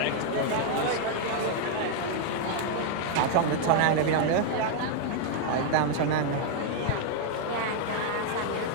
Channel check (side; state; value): both; different; correlation 0.00